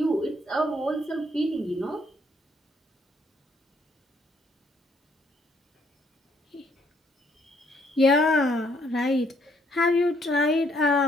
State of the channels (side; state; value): both; normal; correlation 0.68